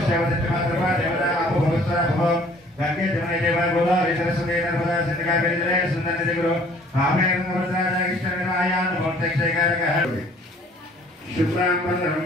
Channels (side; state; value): both; normal; correlation 0.55